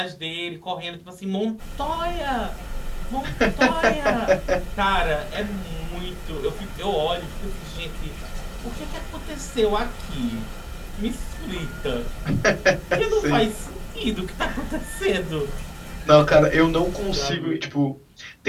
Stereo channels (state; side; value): identical; both; correlation 1.00